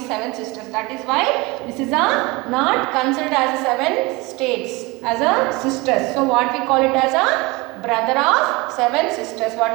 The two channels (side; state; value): left; quieter; 24.2 dB